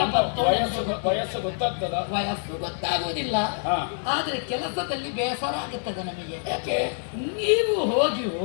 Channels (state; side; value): silent; right; 57 dB below the other